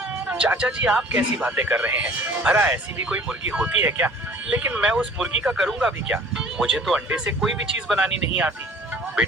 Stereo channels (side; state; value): both; normal; correlation 0.49